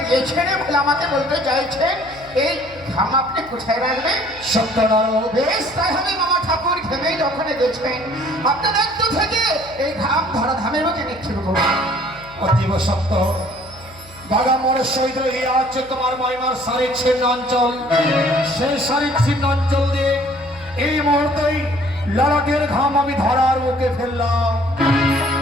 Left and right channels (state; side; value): noise; left; hum, 23 dB below the sound